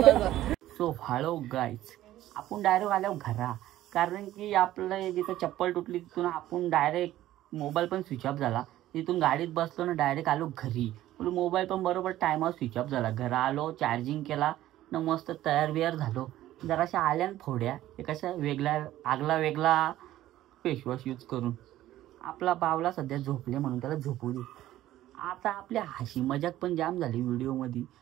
सो हॅलो गाईज, आपण डायरेक्ट आलो घरा. कारण की आपलं जिथं चप्पल तुटली तिथून आपण डायरेक्ट मोबाईल पण स्विच ऑफ झाला. तिथून गाडीत बसलो ना डायरेक्ट आलो घरी. मोबाईल पण बरोबर टायमावर स्विच ऑफ झाला. घरा आलो, चार्जिंग केला ना, मस्त तयार बियार झालो. जराशा आल्या फोड्या एकाशा वेगळा फेसवॉश यूज करून. आपला बावला सध्या झोपले म्हणून त्याला झोपू दे. आता आपल्या हशी मजाक पण जाम झाली व्हिडिओमध्ये.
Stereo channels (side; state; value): left; quieter; 14.2 dB